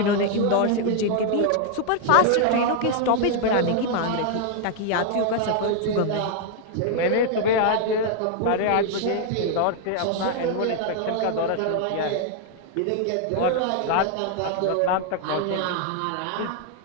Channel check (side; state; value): both; different; correlation 0.00